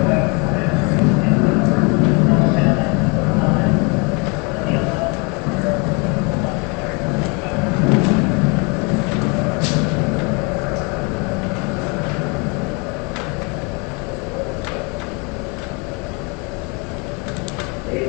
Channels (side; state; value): right; quieter; 31.3 dB